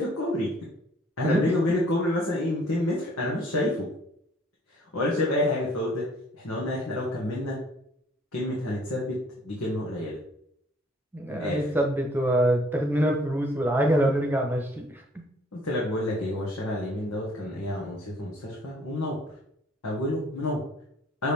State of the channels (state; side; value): normal; both; correlation 0.58